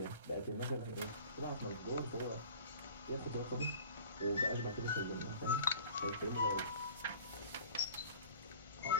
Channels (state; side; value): inverted; both; correlation -0.45